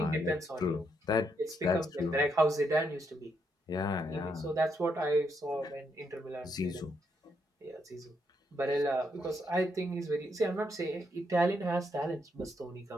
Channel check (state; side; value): normal; both; correlation 0.77